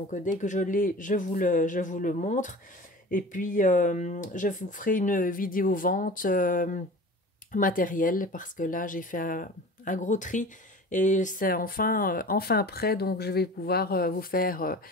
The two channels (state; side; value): normal; both; correlation 0.39